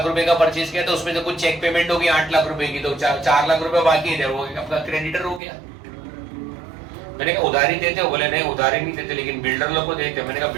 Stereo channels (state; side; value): drops out; left; at 5.4 s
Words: रुपए का परचेस किया तो उसमें से कुछ चेक पेमेंट होगी 8 लाख रुपए की, तो 4 लाख रुपए बाकी है, वो आपका क्रेडिटर हो गया। मैंने कहा उधारी देते हो? बोले नहीं उधारी नहीं देते, लेकिन बिल्डर लोग को देते। मैंने कहा